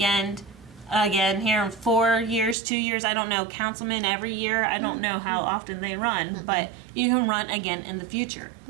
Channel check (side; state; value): left; drops out; at 2.6 s